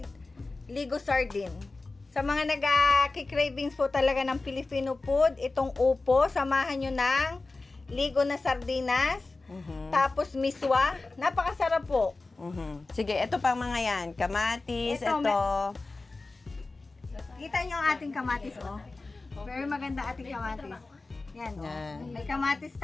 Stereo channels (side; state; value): right; quieter; 3.5 dB